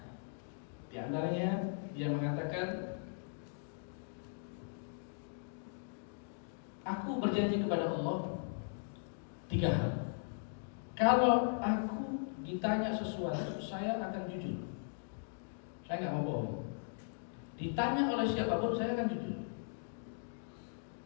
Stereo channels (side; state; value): right; silent; digital silence